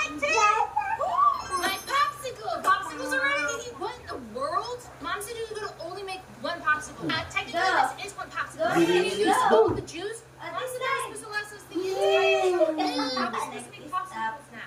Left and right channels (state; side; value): identical; both; correlation 1.00